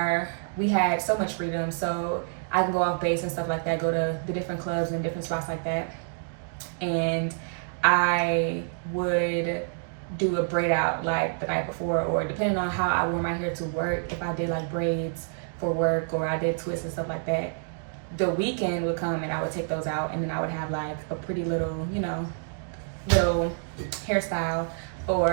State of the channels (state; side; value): silent; left; digital silence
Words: we had so much freedom, so I can go off base and stuff like that, go to the different clubs and different spots like that. And I would do a braid out like the night before, or depending on how I wore my hair to work, if I did like braids for work or I did twists and stuff like that, the weekend would come and I would take those out, and then I would have like a pretty little, little hairstyle